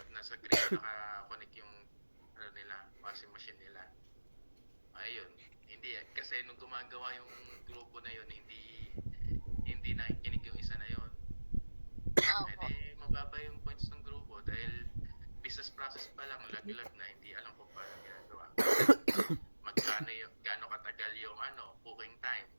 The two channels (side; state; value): both; inverted; correlation -1.00